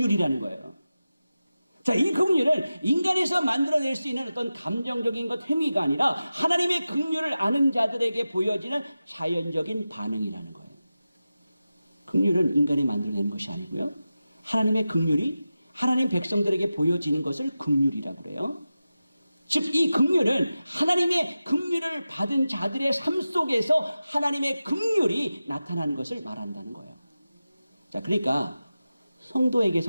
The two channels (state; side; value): inverted; both; correlation -0.94